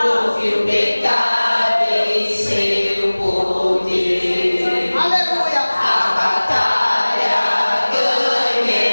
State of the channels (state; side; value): inverted; both; correlation -1.00